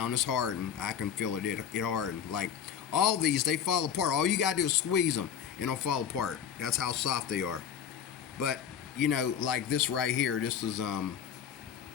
It's hardened. I can feel it. It hardened. Like all these, they fall apart. All you gotta do is squeeze them, and they'll fall apart. That's how soft they are. But you know, like this right here. This is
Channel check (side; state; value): right; quieter; 8.3 dB